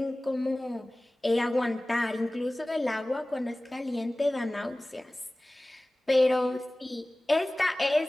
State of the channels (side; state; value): both; normal; correlation 0.98